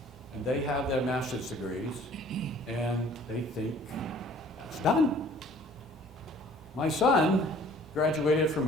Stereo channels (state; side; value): normal; both; correlation 0.53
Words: and they have their master's degrees, and they think it's done. My son graduated from